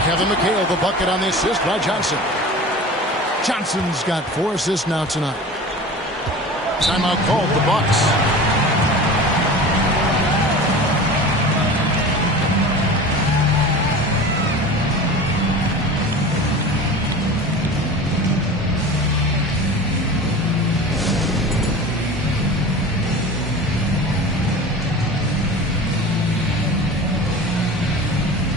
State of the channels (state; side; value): normal; both; correlation 0.36